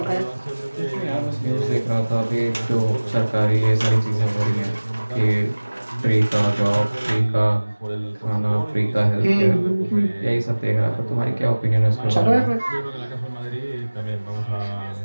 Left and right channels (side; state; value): both; inverted; correlation -1.00